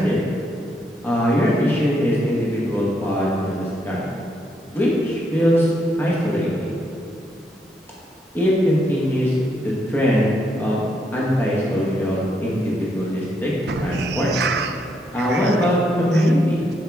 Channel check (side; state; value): both; normal; correlation 0.76